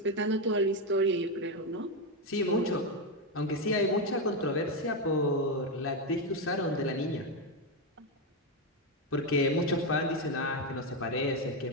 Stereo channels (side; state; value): both; normal; correlation 0.07